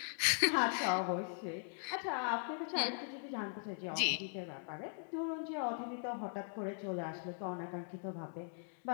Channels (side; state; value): right; silent; digital silence